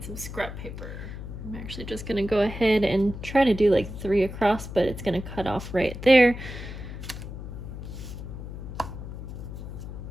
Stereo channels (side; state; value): left; noise; hum, 9 dB below the sound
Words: some scrap paper. I'm actually just going to go ahead and try to do like 3 across, but it's going to cut off right there.